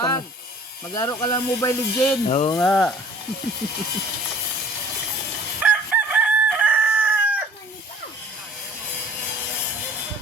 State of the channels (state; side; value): normal; both; correlation 0.51